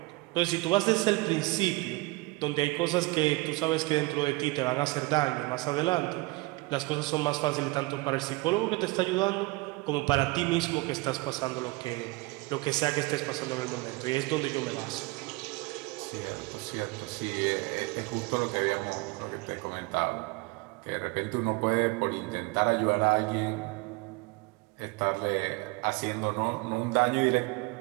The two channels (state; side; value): quieter; left; 23.4 dB